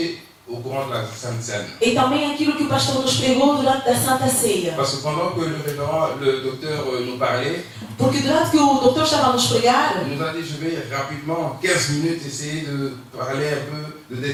au courant de la Sainte Seine. E também aquilo que o pastor nos pregou durante a Santa Ceia. Parce que pendant que le docteur nous parlait, Porque durante que o doutor estava a nos pregar, il nous a dit, je vais rapidement, 15 minutes, essayer de parler un peu, de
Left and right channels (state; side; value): identical; both; correlation 1.00